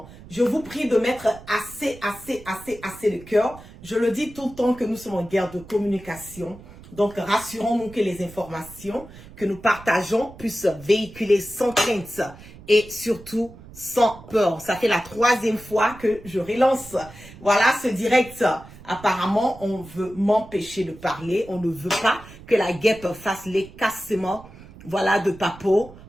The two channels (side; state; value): right; noise; rumble, 19 dB below the sound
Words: Je vous prie de mettre assez de cœur. Je le dis tout le temps que nous sommes en guerre de communication. Donc, rassurons-nous que les informations que nous partageons puissent véhiculer sans crainte et surtout sans peur. Ça fait la 3e fois que je relance. Voilà ce direct. Apparemment, on veut m'empêcher de parler. On ne veut pas que la guêpe fasse l'écassement, voilà, de Papo